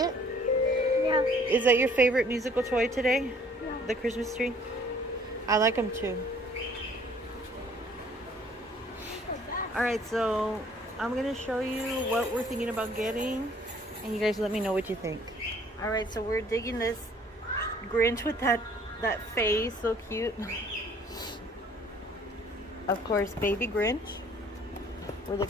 Yeah. Is that your favorite musical toy today? Yeah. The Christmas tree? I like them too. Alright, so I'm going to show you what we're thinking about getting. And you guys let me know what you think. Alright, so we're digging this Grinch with that face. So cute. Of course, baby Grinch. We're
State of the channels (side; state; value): both; normal; correlation 0.58